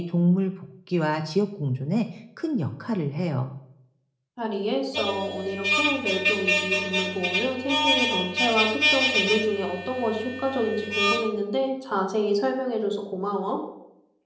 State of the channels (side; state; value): both; identical; correlation 1.00